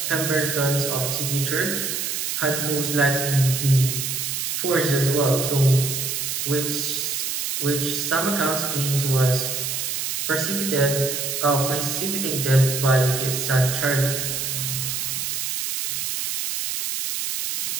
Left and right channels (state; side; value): noise; right; hiss, 2 dB below the sound